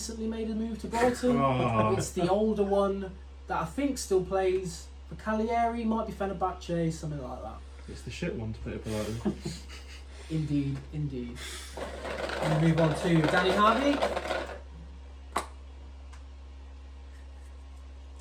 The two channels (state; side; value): identical; both; correlation 1.00